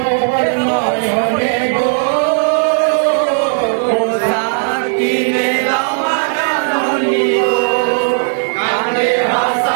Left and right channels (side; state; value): left; silent; digital silence